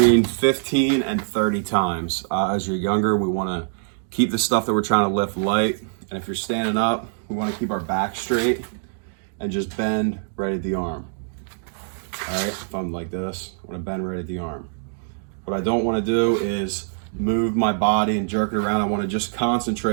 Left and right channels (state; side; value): silent; left; digital silence